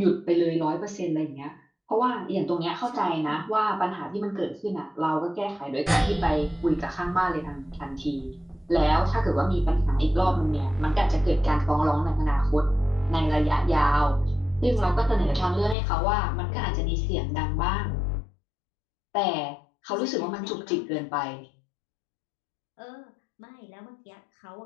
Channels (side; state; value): right; drops out; at 15.8 s